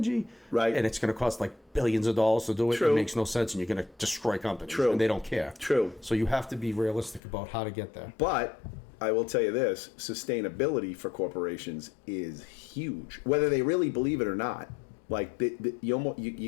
Right. and it's going to cost like billions of dollars to do it. True. It makes no sense, and you're going to destroy companies. True. And they don't care. True. So you have to be realistic about how to get there. But I will tell you this: sustainability for corporations is huge, whether they really believe it or not. Like you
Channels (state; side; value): drops out; right; at 7.2 s